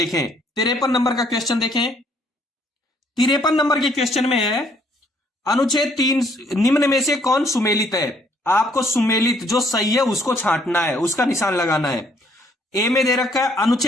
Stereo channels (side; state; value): both; normal; correlation 0.65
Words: 53 नंबर का क्वेश्चन देखें। 53 नंबर के क्वेश्चन में है अनुच्छेद 3 निम्न में से कौन सुमेलित है। आपको सुमेलित जो सही है उसको छांटना है, उसका निशान लगाना है। ए में दे रखा है